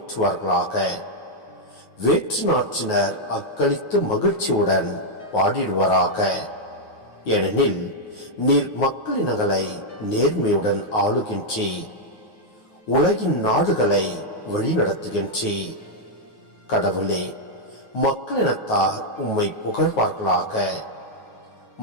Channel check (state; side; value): late; right; 9.4 ms